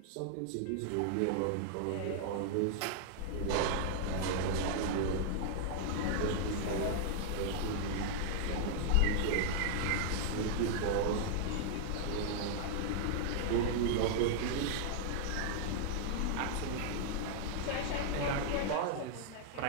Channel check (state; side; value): different; both; correlation -0.01